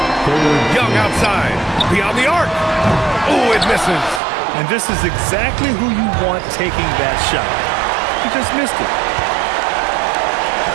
Young outside. Beyond the arc. Oh, it misses. And this is exactly who you want taking that shot. He just missed it.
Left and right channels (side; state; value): left; drops out; at 4.2 s